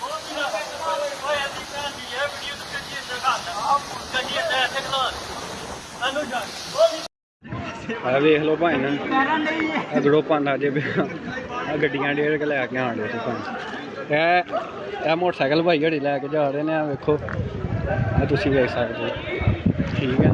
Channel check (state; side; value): identical; both; correlation 1.00